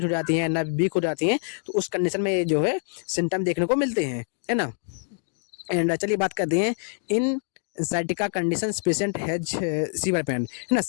हो जाती हैं, नर्व वीक हो जाती हैं, तो उस कंडीशन में ये जो है सिम्टम देखने को मिलते हैं, है ना। एंड चलिए बात करते हैं इन sciatica condition patient has severe pain, है ना।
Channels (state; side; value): silent; right; 61 dB below the other